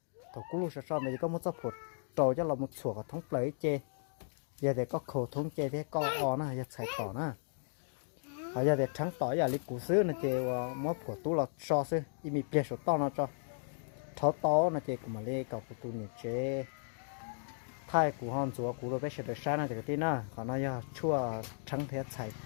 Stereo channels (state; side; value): silent; right; digital silence